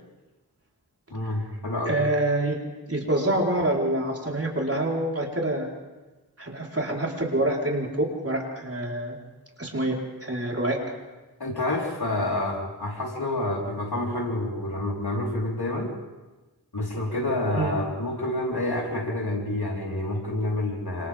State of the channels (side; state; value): both; normal; correlation 0.13